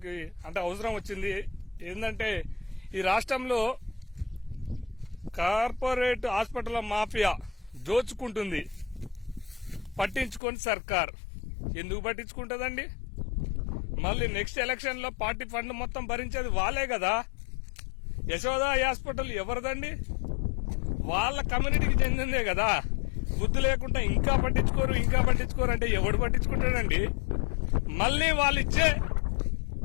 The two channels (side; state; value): right; drops out; at 10.4 s